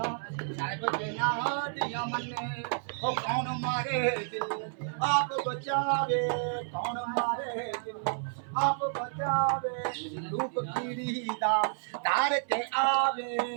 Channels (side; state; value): left; silent; 57 dB below the other